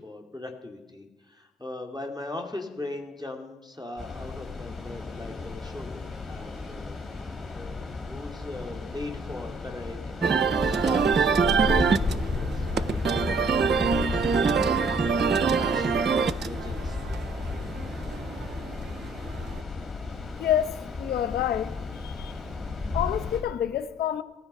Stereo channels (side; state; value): both; normal; correlation 0.60